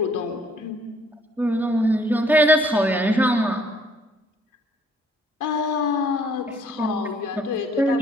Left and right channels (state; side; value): normal; both; correlation 0.63